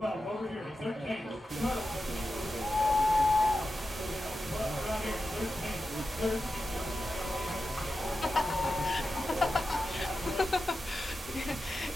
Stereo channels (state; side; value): normal; both; correlation 0.91